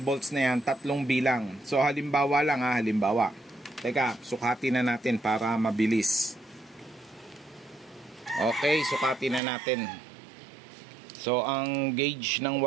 volts na yan, 3 bilang. So halimbawa lang halimbawa. Teka, sukatin na natin para mabilis. Okay, sukatin na natin. So ang gauge ng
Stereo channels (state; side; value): drops out; left; at 9.4 s